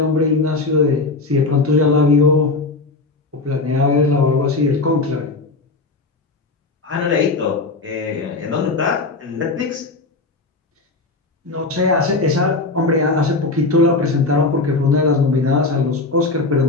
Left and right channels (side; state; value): right; quieter; 3.5 dB